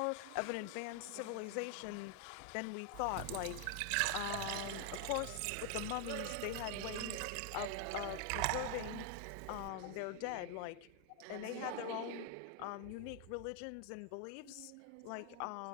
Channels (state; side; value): different; both; correlation 0.00